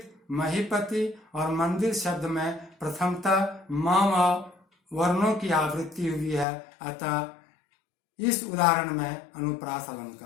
महीपति और मंदिर शब्द में प्रथमतः म वर्णों की आवृत्ति हुई है, अतः इस उदाहरण में अनुप्रास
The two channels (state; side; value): drops out; right; at 6.5 s